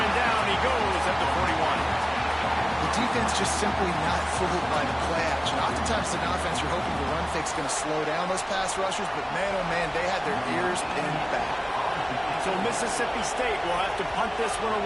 and down he goes at the 41. The defense just simply not fooled by the play action. Oftentimes in offense, you're hoping the run fake's going to slow down those pass rushers, but man, oh man, they had their ears pinned back. So Mississippi State will have to punt this one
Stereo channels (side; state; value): both; identical; correlation 1.00